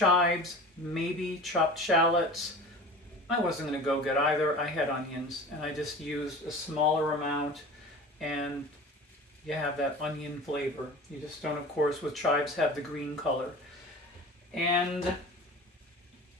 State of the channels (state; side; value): normal; both; correlation 0.38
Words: maybe chopped shallots. I wasn't going to go get either. I had onions, and I just used a smaller amount, and you have that onion flavor. You just don't, of course, with chives have the green color. And a